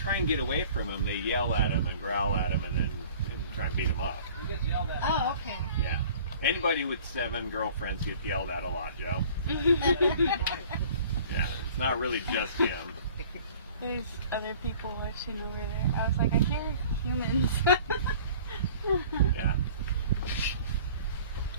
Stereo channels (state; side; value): inverted; both; correlation -0.48